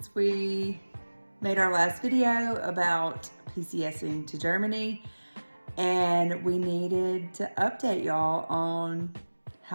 we made our last video about PCSing to Germany, and we needed to update y'all on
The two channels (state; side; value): inverted; both; correlation -1.00